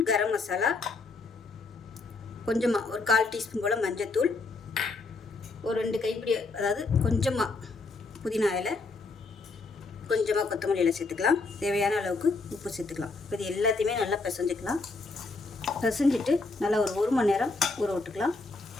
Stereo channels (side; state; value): right; quieter; 3.7 dB